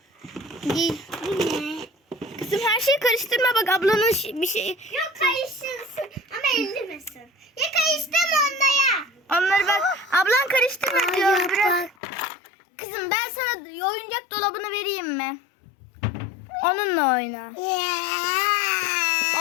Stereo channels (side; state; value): right; drops out; at 12.0 s